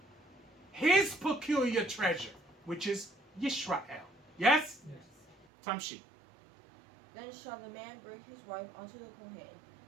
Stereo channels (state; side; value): drops out; left; at 5.5 s